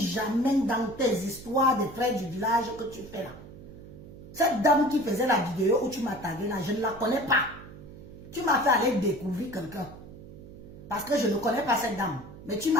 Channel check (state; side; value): noise; right; hum, 16 dB below the sound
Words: jamais dans tes histoires des frères du village que tu fais là. Cette dame qui faisait la vidéo où tu m'as tagué là, je ne la connais pas. Tu m'as fait aller découvrir quelqu'un. Parce que je ne connais pas cette dame. Mais tu